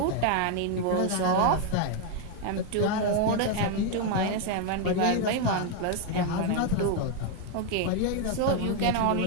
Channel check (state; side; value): different; both; correlation 0.01